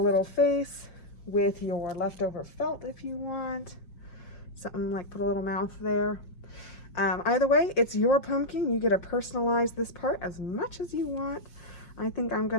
face with your leftover felt if you want. Something like put a little mouth there. Either way, it's your pumpkin. You get to personalize this part as much as you want. I think I'm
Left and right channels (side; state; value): right; late; 5.6 ms